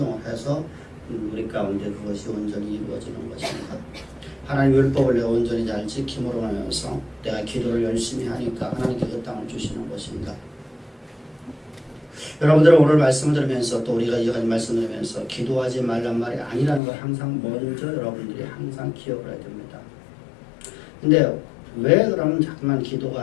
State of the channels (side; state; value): right; drops out; at 16.8 s